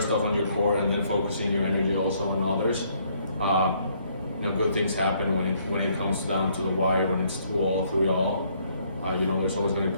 off on your core and then focusing your energy also on others, good things happen when it comes down to the wire, when it's 2-all, 3-all. There's always going to be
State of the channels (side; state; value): both; inverted; correlation -0.67